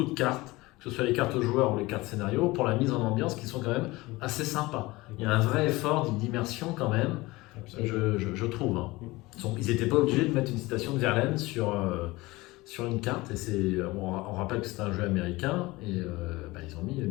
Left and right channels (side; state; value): right; quieter; 21.0 dB